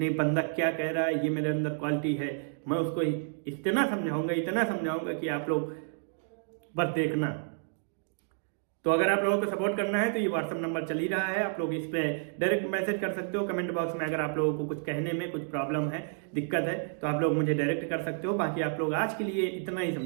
बंदा क्या कह रहा है, ये मेरे अंदर क्वालिटी है। मैं उसको इतना समझाऊंगा कि आप लोग बस देखना। तो अगर आप लोगों को सपोर्ट करना है तो ये व्हाट्सअप नंबर चल ही रहा है, आप लोग इस पे डायरेक्ट मैसेज कर सकते हो। कमेंट बॉक्स में अगर आप लोगों को कुछ कहने में कुछ प्रॉब्लम है, दिक्कत है, तो आप लोग मुझे डायरेक्ट कर सकते हो। बाकी आप लोग आज के लिए इतना ही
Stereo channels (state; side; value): silent; left; digital silence